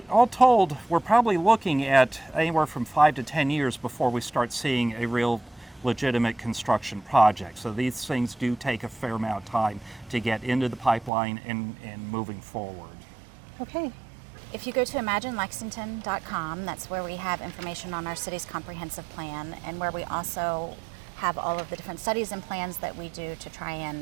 told, we're probably looking at anywhere from 5 to 10 years before we start seeing a real legitimate construction project. So these things do take a fair amount of time to get into the pipeline and moving forward. Okay. If you go to imaginelexington.com, that's where we have information on our city's comprehensive plan, and where we also have all of the different studies and plans that we do to try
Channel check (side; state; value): left; drops out; at 11.1 s